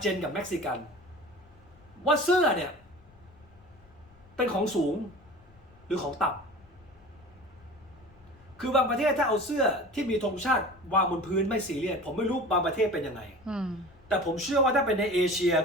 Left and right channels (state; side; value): noise; left; rumble, 27 dB below the sound